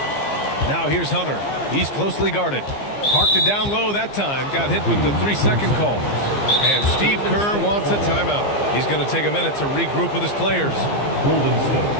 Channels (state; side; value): late; right; 15 ms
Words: Now here's Hunter. He's closely guarded. Parked it down low that time. Got hit with the 3-second call. And Steve Kerr wants a timeout. He's going to take a minute to regroup with his players. Golden State.